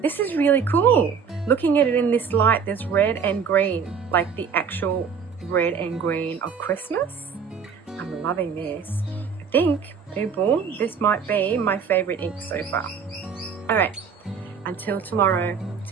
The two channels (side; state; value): left; quieter; 6.4 dB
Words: this is really cool. Looking at it in this light, there's red and green, like the actual red and green of Christmas. I'm loving this. I think, people, this might be my favorite ink so far. Alright, until tomorrow,